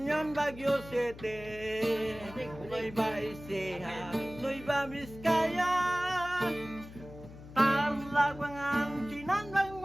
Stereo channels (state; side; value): noise; left; hum, 16 dB below the sound